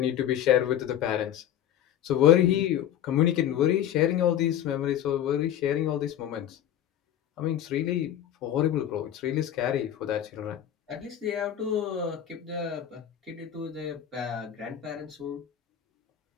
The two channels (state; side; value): quieter; right; 10.7 dB